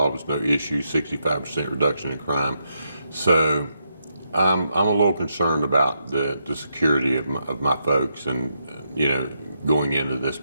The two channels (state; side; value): inverted; both; correlation -0.81